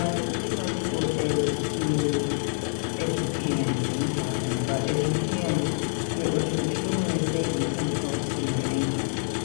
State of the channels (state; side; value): silent; right; digital silence